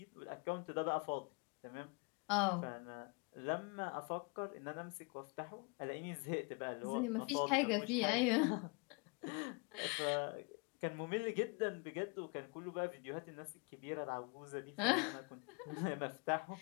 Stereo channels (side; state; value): right; quieter; 30.7 dB